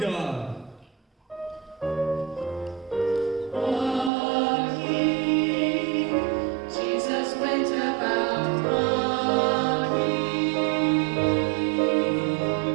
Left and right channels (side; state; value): left; drops out; at 4.1 s